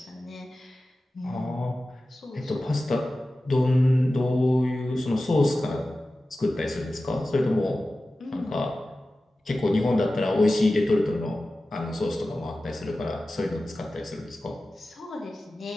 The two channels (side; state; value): both; normal; correlation 0.95